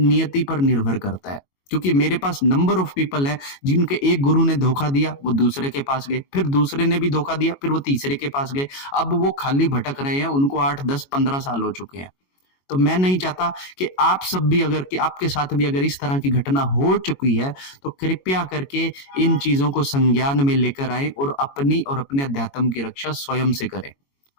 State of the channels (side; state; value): right; late; 22 ms